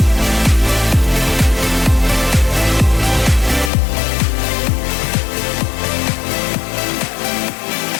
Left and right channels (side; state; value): right; drops out; at 3.7 s